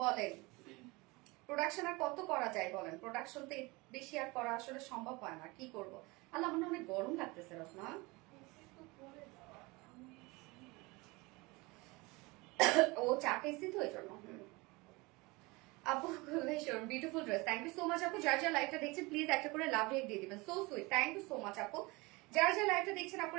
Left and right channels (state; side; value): quieter; left; 24.4 dB